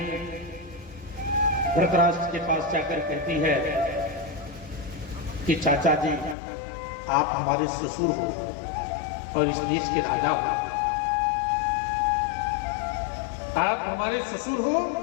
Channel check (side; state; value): right; drops out; at 6.4 s